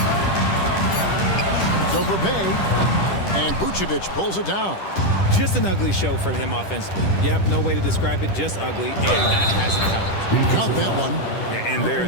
It's over Bay. And Vucevic pulls it down. Just an ugly show from him offensively. Yep, no way to describe it, just ugly, and that hasn't helped. Count that one. And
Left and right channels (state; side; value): late; right; 10 ms